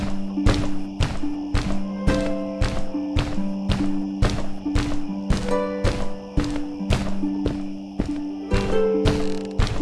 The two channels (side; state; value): both; identical; correlation 1.00